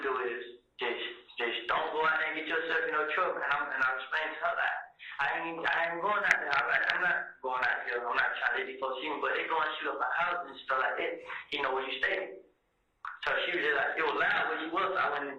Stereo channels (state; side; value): identical; both; correlation 1.00